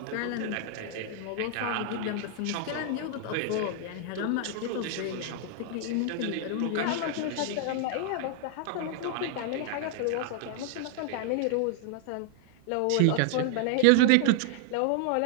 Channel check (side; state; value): both; different; correlation 0.00